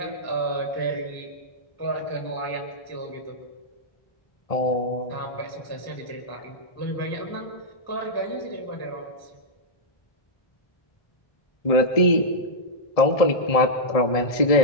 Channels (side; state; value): right; late; 1.7 ms